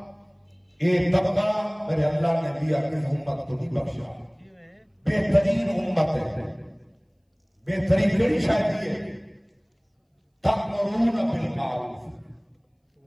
طبقہ میرے اللہ نے دیا کہ امت کو نہیں بخشا بہترین امت ہے بہترین کئی شاید یہ تأمرون بالمعروف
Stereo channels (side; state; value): both; identical; correlation 1.00